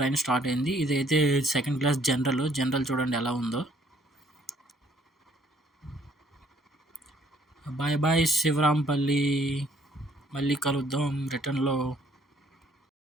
స్టార్ట్ అయింది. ఇదైతే సెకండ్ క్లాస్ జనరల్ చూడండి ఎలా ఉందో. బాయ్ బాయ్ శివరాంపల్లి, మళ్ళీ కలుద్దాం రిటర్న్లో.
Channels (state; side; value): normal; both; correlation 0.63